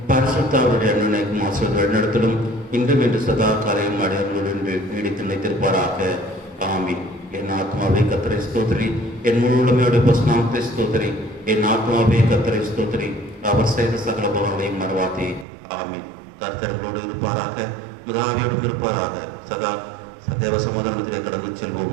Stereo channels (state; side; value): drops out; left; at 15.5 s